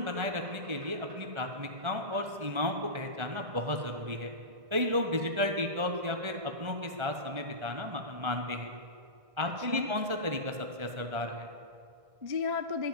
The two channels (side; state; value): left; late; 1.4 ms